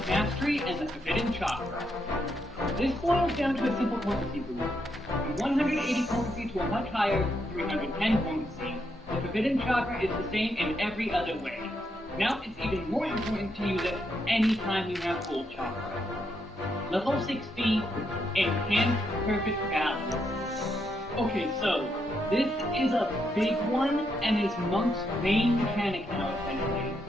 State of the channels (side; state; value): both; normal; correlation 0.79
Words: Mastery and the Forbidden Chakra. This boils down to a simple potency boost. From 180 potency to a much higher 310 potency. The Forbidden Chakra is the same in every other way. Now it's even more important to use it anytime you have full chakra. Level 60, Enhanced Perfect Balance. Okay, so this is a big one and is Monk's main mechanic now, essentially.